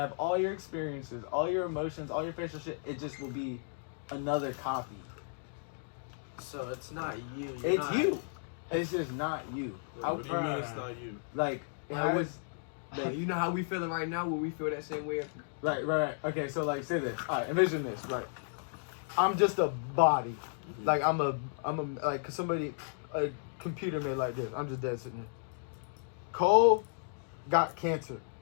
all your experiences, all your emotions, all your facial shit. It just will be another copy. So it's not you. It's you. It's just not you. What do you mean it's not you? Like, you know how we feeling right now? Will we feel that same way? Right. Okay, so like, say this. All right, envision this. Right, I'm just a body. Like I'm a like somebody, a computer made like this. I'm just dead sitting there. Kohl got cancer.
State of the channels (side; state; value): right; silent; digital silence